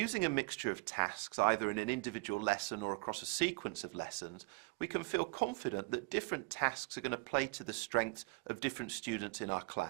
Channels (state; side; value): quieter; left; 28.1 dB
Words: a mixture of tasks, either in an individual lesson or across a sequence of lessons, we can feel confident that different tasks are going to play to the strengths of different students in our